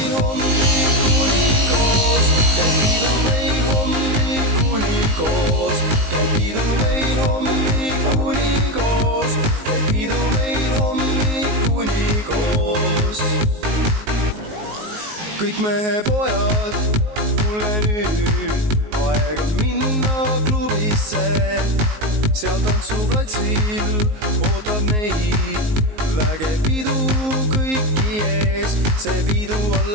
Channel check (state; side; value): late; left; 19 ms